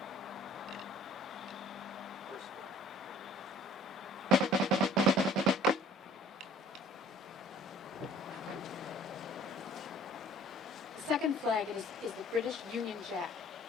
The second flag is the British Union Jack.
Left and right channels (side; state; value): both; normal; correlation 0.53